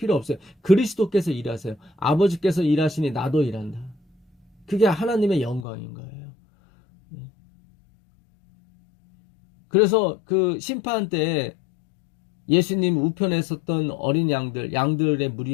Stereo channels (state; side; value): drops out; right; at 5.7 s